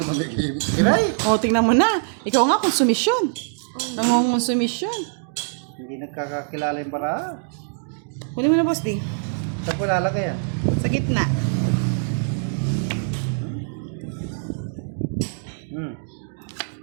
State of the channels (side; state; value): left; silent; digital silence